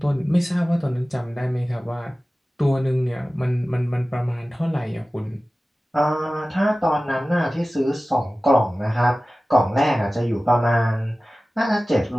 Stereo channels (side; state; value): both; normal; correlation 0.97